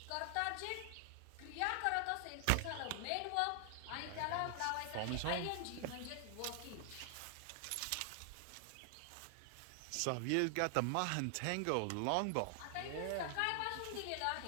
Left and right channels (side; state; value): both; different; correlation 0.00